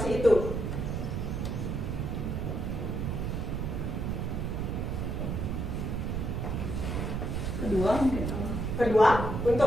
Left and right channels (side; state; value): right; noise; rumble, 1 dB below the sound